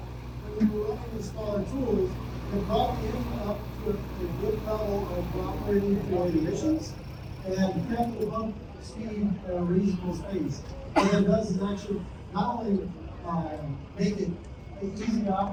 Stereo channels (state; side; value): identical; both; correlation 1.00